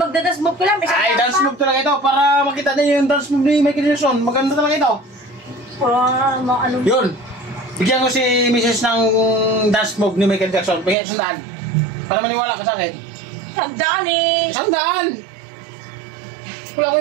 move ko lang. May sandaan Ay, dance pa. move talaga ito. Para makita din yung dance move ni Michael Jackson. Maganda talaga ito. Ah, mga ano. Yun. Bigyan ko si Mrs. ng dance move ni Michael Jackson. Bigyan isang daan. Para maniwala ka sa akin. Sandaan eh. Isang daan! Wala ko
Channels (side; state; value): left; drops out; at 11.0 s